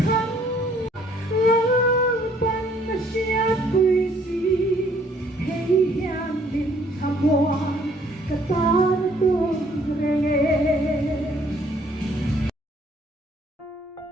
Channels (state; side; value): normal; both; correlation 0.62